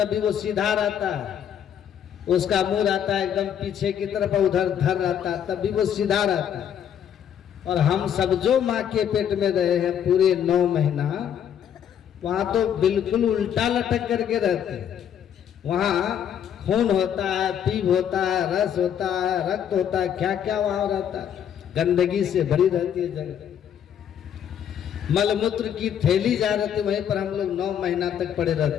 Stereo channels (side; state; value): right; quieter; 9.1 dB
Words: वो सीधा रहता है, उसका मुंह रहता है एकदम पीछे की तरफ, उधर धर रहता है, तभी वो सीधा रहता है। और हम सब जो माँ के पेट में रहे हैं पूरे 9 महीना, वहाँ तो बिल्कुल उल्टा लटक करके रहते हैं। वहाँ खून होता है, पीप होता है, रस होता है, रक्त होता है, क्या क्या वहाँ रहता है। गंदगी से भरी रहती है जगह, मलमूत्र की थैली जा रहती है, वहीं पर हम लोग 9 महीना तक पड़े